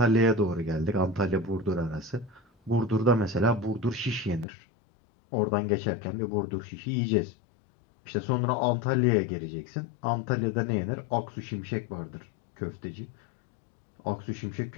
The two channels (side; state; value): right; drops out; at 4.5 s